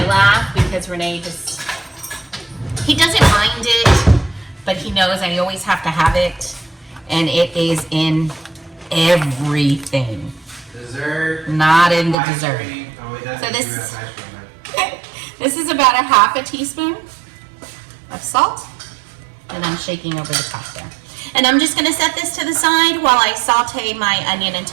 laugh because Renee he doesn't mind it, but he knows I always have to have it, and it is in everything. Dessert. Not in the dessert. So this is about a half a teaspoon of salt, and I'm shaking over the top there. And I'm just gonna set this to the side while I saute my onion and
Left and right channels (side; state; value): left; drops out; at 12.2 s